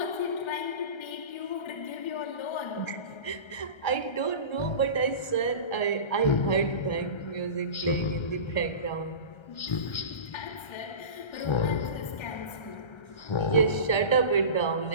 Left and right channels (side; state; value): right; late; 1.3 ms